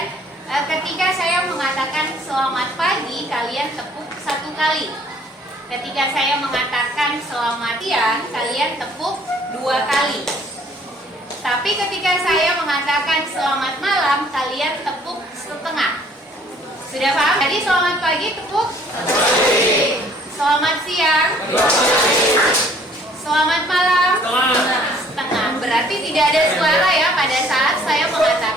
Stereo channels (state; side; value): normal; both; correlation 0.58